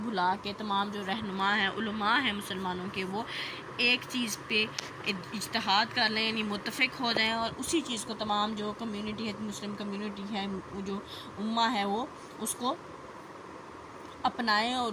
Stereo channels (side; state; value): both; identical; correlation 1.00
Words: بھلا کے تمام جو رہنما ہیں، علماء ہیں مسلمانوں کے، وہ ایک چیز پہ اجتہاد کر لیں، یعنی متفق ہو جائیں اور اسی چیز کو تمام جو کمیونٹی ہے، مسلم کمیونٹی ہے، جو امہ ہے وہ اس کو اپنائیں اور